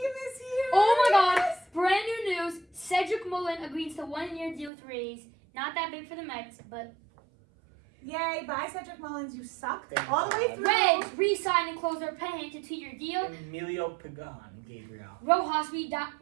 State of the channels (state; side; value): drops out; left; at 4.7 s